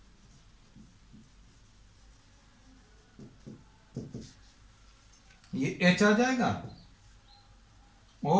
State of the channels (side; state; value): both; identical; correlation 1.00